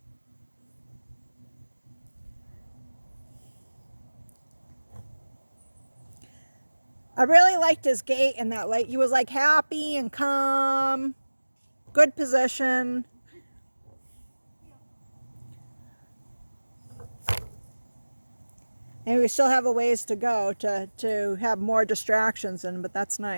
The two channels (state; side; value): inverted; both; correlation -1.00